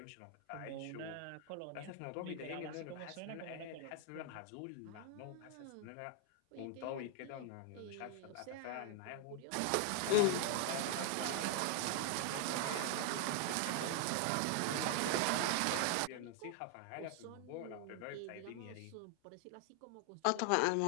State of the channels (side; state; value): both; different; correlation 0.00